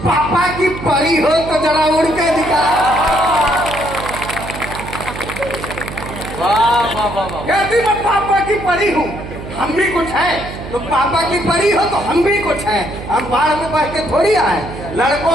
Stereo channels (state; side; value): noise; right; hum, 10 dB below the sound